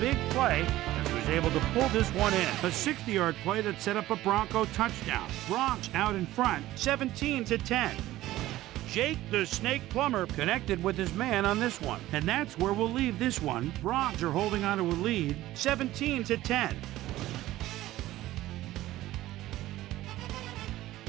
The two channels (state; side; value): quieter; left; 15.7 dB